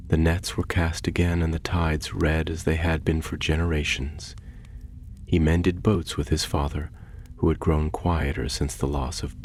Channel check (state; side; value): identical; both; correlation 1.00